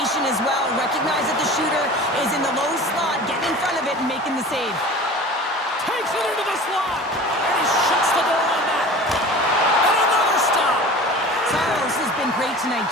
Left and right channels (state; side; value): normal; both; correlation 0.39